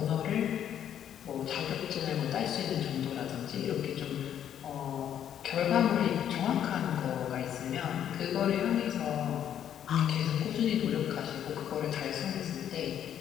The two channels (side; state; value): right; quieter; 9.9 dB